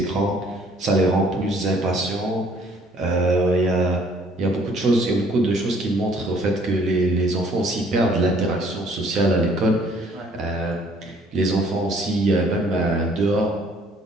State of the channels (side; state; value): both; normal; correlation 0.60